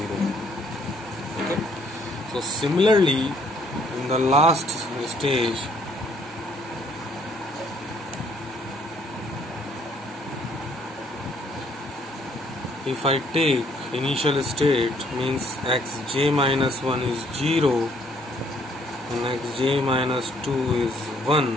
Okay, so similarly in the last stage, if I take initial state, means xj minus 1 is 0 and xj minus 2 is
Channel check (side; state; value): both; normal; correlation 0.65